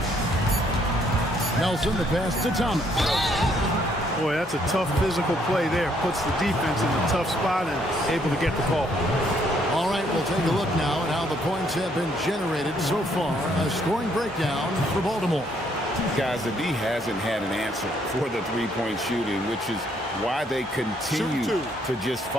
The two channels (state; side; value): normal; both; correlation 0.69